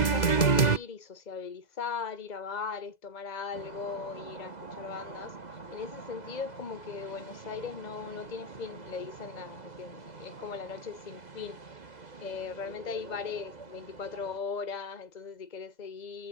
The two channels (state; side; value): late; right; 2.0 ms